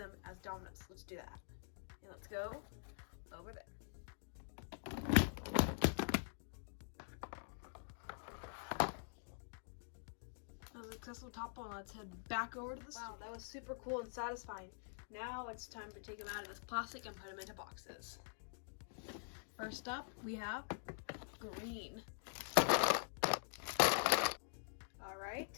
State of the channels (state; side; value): silent; right; digital silence